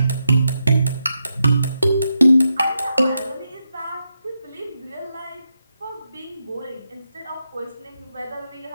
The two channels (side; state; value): both; inverted; correlation -0.85